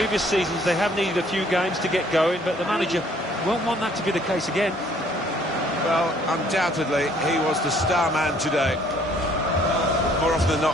seasons they have needed a few games to get going, but the manager won't want that to be the case again. Well, undoubtedly he was the star man today. More often than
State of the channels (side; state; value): both; normal; correlation 0.61